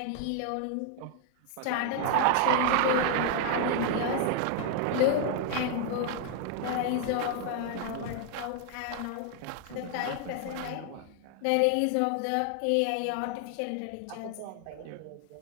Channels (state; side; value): different; both; correlation 0.00